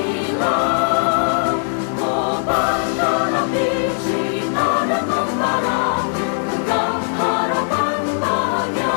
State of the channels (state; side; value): silent; right; digital silence